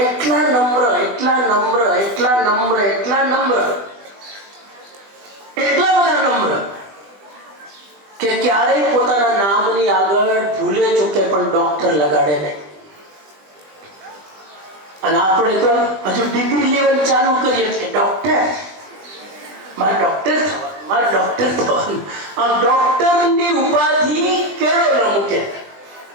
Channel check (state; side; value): late; left; 20 ms